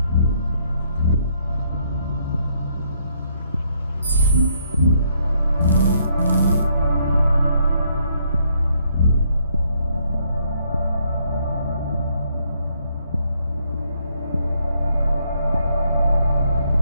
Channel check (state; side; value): inverted; both; correlation -0.71